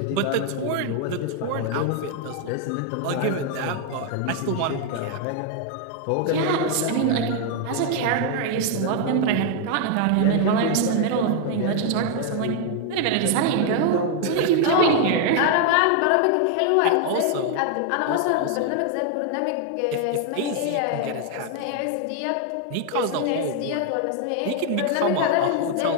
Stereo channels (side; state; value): both; different; correlation 0.00